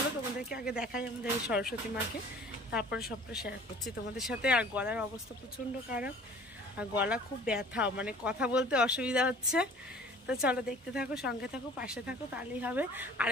তোমাদেরকে আগে দেখাই আমাদের সরস্বতী মাকে, তারপরে সবটা শেয়ার করছি তোমাদের সাথে। আর গলার অবস্থা প্রচণ্ড খারাপ, আর গলা খুব ব্যথা, মানে কথা বলতে অসুবিধা হচ্ছে। তো চলো দেখতে থাকো, সঙ্গে থাকো, পাশে থাকো, তাহলেই হবে।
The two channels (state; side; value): normal; both; correlation 0.48